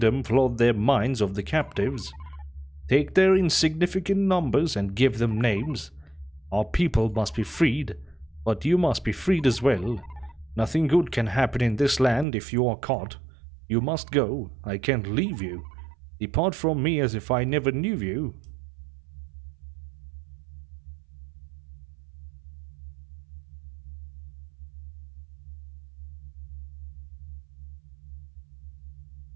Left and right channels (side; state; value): left; drops out; at 12.2 s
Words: flood their minds of the captives. Take their insignificant numbers and give them names. Our people must be freed, but you must be freed as well. Nothing good can happen in this land if you are caught. You must go. I can't leave you. Depart from me as if I never knew you.